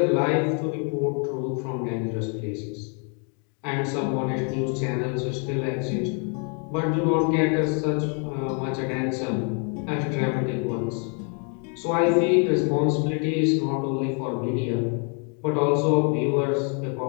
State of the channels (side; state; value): right; quieter; 38.7 dB